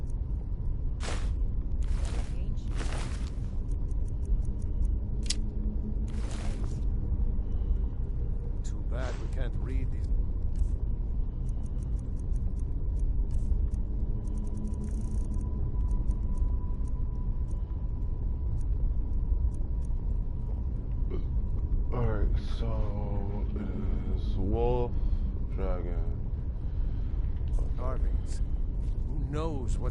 Too bad we can't read these. Alright, so it is wolf, dragon. Carvings. Who knows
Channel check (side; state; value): both; identical; correlation 1.00